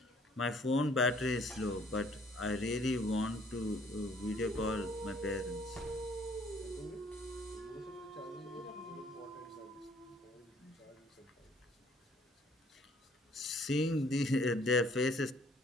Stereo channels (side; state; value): both; normal; correlation 0.60